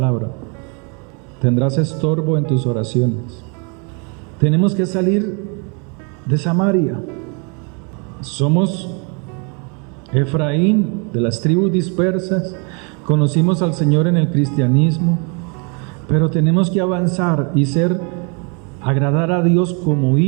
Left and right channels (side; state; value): left; quieter; 35.2 dB